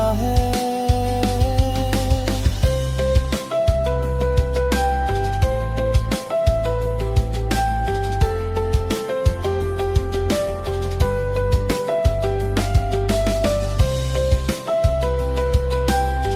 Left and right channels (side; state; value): both; identical; correlation 1.00